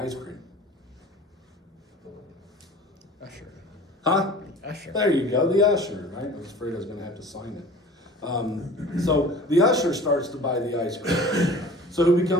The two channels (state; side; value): normal; both; correlation 0.42